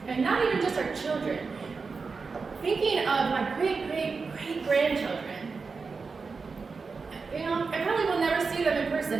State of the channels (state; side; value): quieter; left; 4.7 dB